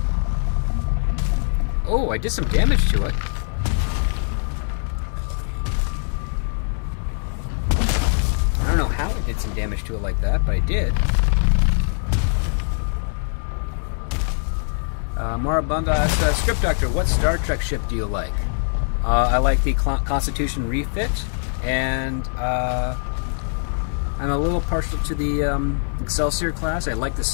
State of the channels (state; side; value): silent; right; digital silence